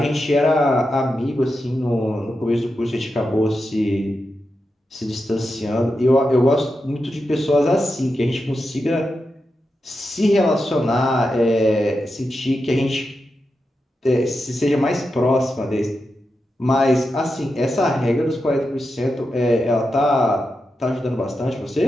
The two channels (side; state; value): both; normal; correlation 0.88